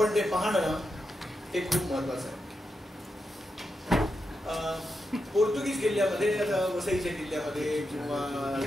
ते पाहणं हे खूप महत्वाचं आहे. पोर्तुगीज किल्ल्यामध्ये, वसईच्या किल्ल्यामध्ये किंवा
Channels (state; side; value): normal; both; correlation 0.86